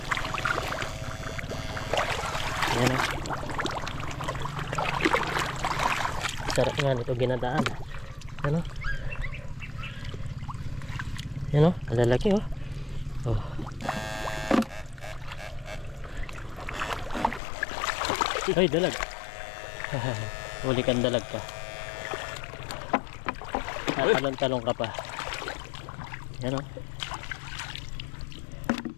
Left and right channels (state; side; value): drops out; right; at 17.4 s